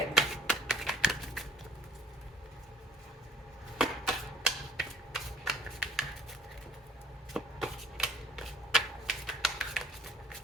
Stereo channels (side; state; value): both; normal; correlation 0.56